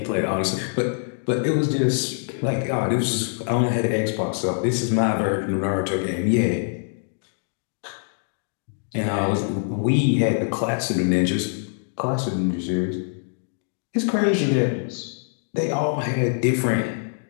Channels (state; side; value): silent; right; digital silence